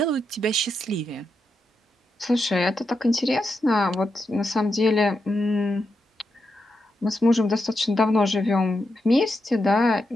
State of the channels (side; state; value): both; normal; correlation 0.85